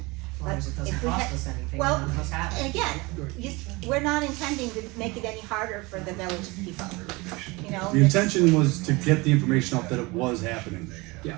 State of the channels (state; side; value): quieter; left; 24.4 dB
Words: As long as it doesn't If we cost had- us anything, well, none of us have And it. again, we're not intending to make it any harder for the village people, you know? The intention was to get the information out that it was happening. Yeah.